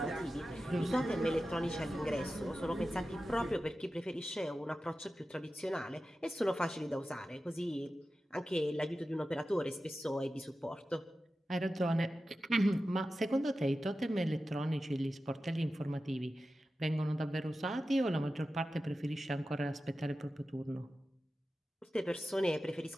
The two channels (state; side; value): normal; both; correlation 0.93